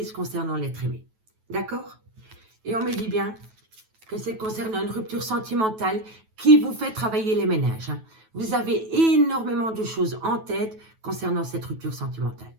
concernant l'être aimé. D'accord? Et on me dit bien que c'est concernant une rupture sentimentale qui vous fait travailler les ménages. Vous avez énormément de choses en tête concernant cette rupture sentimentale.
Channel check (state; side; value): late; left; 9.2 ms